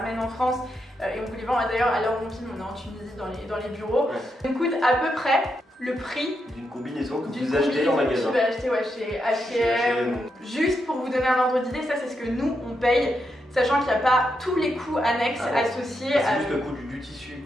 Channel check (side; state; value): both; normal; correlation 0.83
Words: en France. Et on vous les vend d'ailleurs à l'heure où on filme, on est en Tunisie dans les bureaux. Ça coûte à peu près le prix d'une combinaison que vous achetez en magasin. Tu vas acheter chez H&M. Juste pour vous donner un ordre d'idée, ça c'est ce que nous on paye, sachant qu'il n'y a pas tous les coûts annexes associés. C'est juste le coût du tissu,